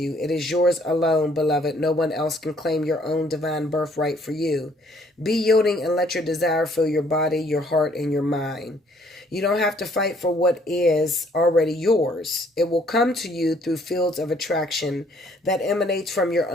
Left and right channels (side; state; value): both; normal; correlation 0.63